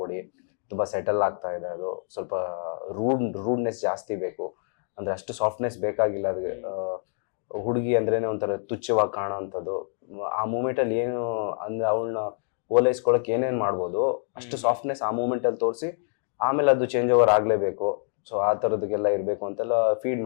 ಕೊಡಿ, ತುಂಬ ಸೆಟಲ್ ಆಗ್ತಾ ಇದೆ, ಅದು ಸ್ವಲ್ಪ ರೂಡ್ನೆಸ್ ಜಾಸ್ತಿ ಬೇಕು, ಅಂದರೆ ಅಷ್ಟು ಸಾಫ್ಟ್ನೆಸ್ ಬೇಕಾಗಿಲ್ಲ ಅದಕ್ಕೆ. ಹುಡುಗಿ ಅಂದ್ರೇನೆ ಒಂಥರ ತುಚ್ಛವಾಗಿ ಕಾಣೋ ಅಂಥದ್ದು. ಆ ಮೂಮೆಂಟಲ್ಲಿ ಏನು ಅಂದರೆ ಅವಳನ್ನ ಓಲೈಸ್ಕೊಳಕ್ಕೆ ಏನೇನು ಮಾಡ್ಬೋದು ಅಷ್ಟು ಸಾಫ್ಟ್ನೆಸ್ ಆ ಮೂಮೆಂಟಲ್ಲಿ ತೋರಿಸಿ ಆಮೇಲೆ ಅದು ಚೇಂಜ್ ಓವರ್ ಆಗಲೇಬೇಕು. ಸೊ ಆ ಥರದಕ್ಕೆಲ್ಲ ಇರಬೇಕು ಅಂತೆಲ್ಲ ಫೀಡ್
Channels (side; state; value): right; silent; 61 dB below the other